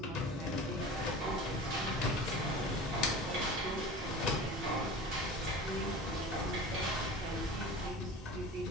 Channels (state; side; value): normal; both; correlation 0.36